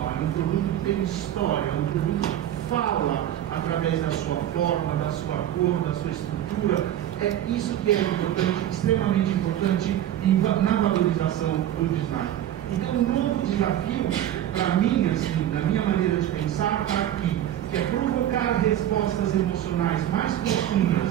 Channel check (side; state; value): left; quieter; 11.8 dB